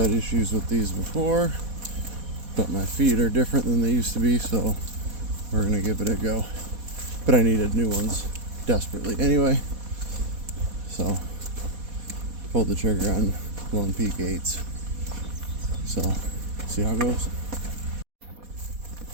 issues with these before, but my feet are different than they used to be, so we're gonna give it a go. But I needed new ones desperately anyway, so pulled the trigger on Lone Peak 8s. So see how it goes.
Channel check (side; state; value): left; late; 4.1 ms